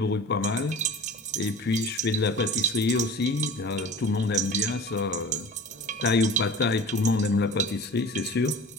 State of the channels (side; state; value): both; normal; correlation 0.39